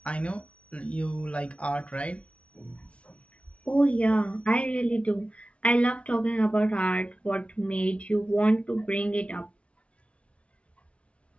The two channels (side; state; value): right; late; 0.061 ms